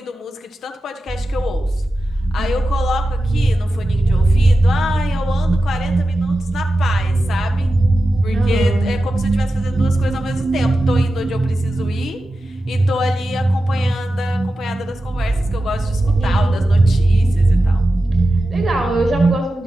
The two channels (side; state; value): both; normal; correlation 0.92